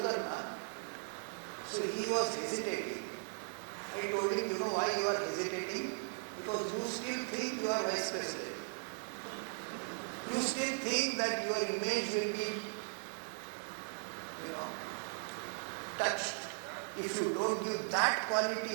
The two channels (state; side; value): silent; left; 52 dB below the other